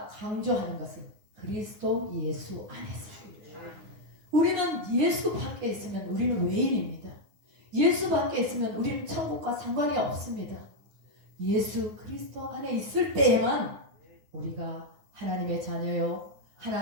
강조하는 것은 그리스도 예수 안에서. 우리는 예수 밖에 있으면 우리는 외인입니다. 예수 밖에 있으면 우리는 천국과 상관이 없습니다. 예수 그리스도 안에 있을 때에만 우리가 하나님의 자녀요,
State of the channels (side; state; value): left; late; 9.7 ms